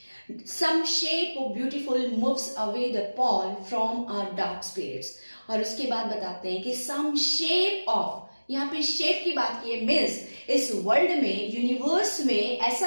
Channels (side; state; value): both; inverted; correlation -1.00